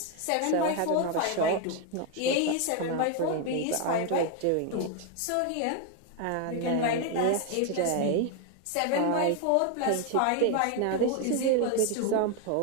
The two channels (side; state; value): both; different; correlation 0.01